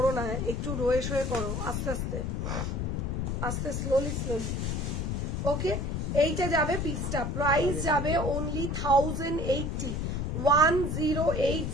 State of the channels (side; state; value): left; noise; rumble, 1 dB below the sound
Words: না, একটু রয়ে শোয়ে করো, আস্তে আস্তে আস্তে, স্লোলি স্লোলি। ওকে, এইটা যাবে পিসটা, প্রাইস যাবে অনলি 1080,